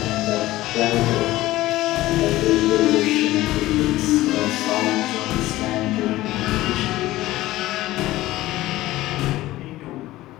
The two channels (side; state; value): right; quieter; 16.8 dB